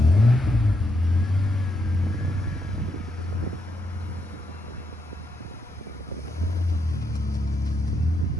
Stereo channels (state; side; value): normal; both; correlation 0.80